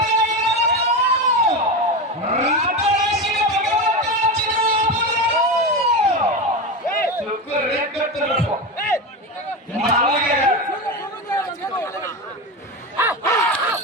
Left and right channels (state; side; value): normal; both; correlation 0.19